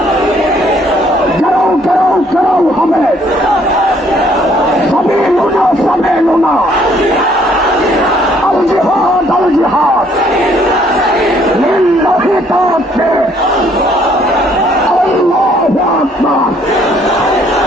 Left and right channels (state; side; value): normal; both; correlation 0.64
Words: কেউ কেউ কেউ হবে, সবই লুনা সবে লুনা, আল জিহাদ আল জিহাদ লিল্লাহি তাকবীর, আল্লাহু আকবার।